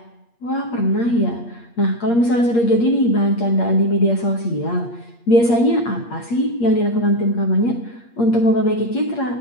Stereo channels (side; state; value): right; late; 8.5 ms